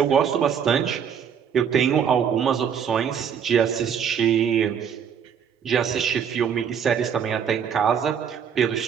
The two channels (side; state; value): left; quieter; 7.7 dB